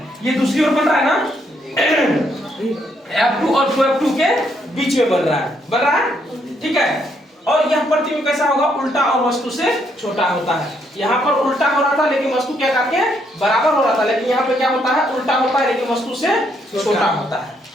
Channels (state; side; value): normal; both; correlation 0.73